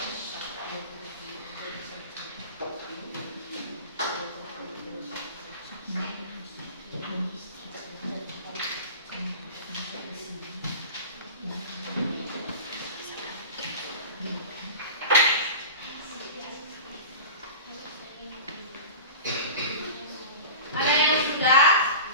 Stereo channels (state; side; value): inverted; both; correlation -0.33